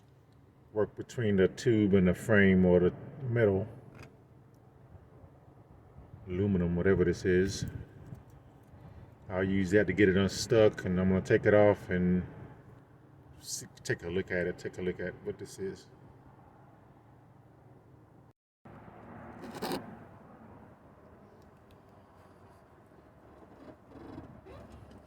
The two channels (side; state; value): both; identical; correlation 1.00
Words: work between the tube and the frame or the metal, aluminum, whatever this is. I'll use that to get it unstuck, and I'm gonna take it off and take a look at what this is.